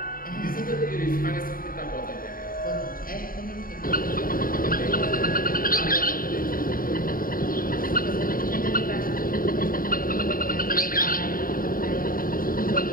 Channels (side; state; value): right; late; 0.41 ms